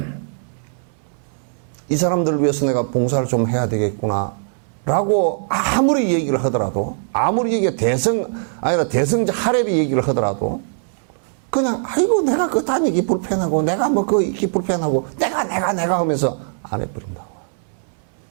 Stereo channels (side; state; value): left; silent; 65 dB below the other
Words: 이 사람들을 위해서 내가 봉사를 좀 해야 되겠구나. 라고 아무리 얘기를 하더라도, 아무리 얘기가 대성자 하레비 얘기를 하더라도, 그냥, 아이고, 내가 그 다니기 불편하고, 내가 뭐 그 있기 불편하고, 내가 하면서 안 해버린다고.